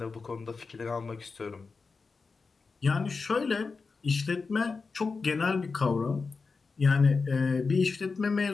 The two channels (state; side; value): quieter; right; 4.5 dB